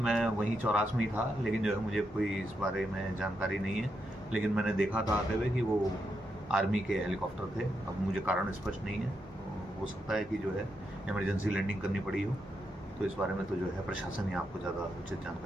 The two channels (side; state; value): both; normal; correlation 0.83